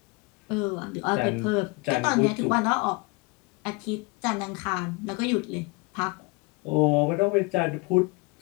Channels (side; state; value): right; quieter; 27.2 dB